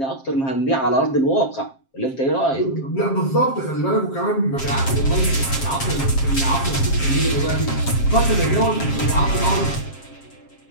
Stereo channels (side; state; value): right; late; 7.5 ms